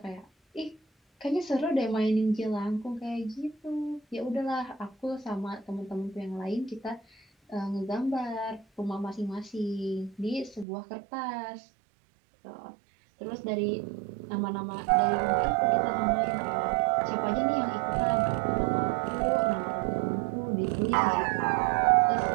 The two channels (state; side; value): drops out; left; at 10.7 s